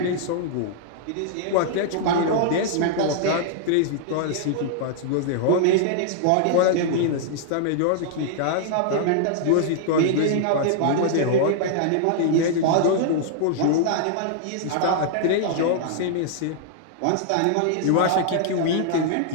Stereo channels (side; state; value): both; different; correlation -0.01